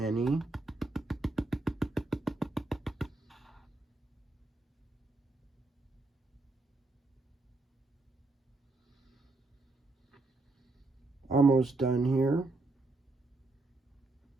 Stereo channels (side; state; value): left; quieter; 3.1 dB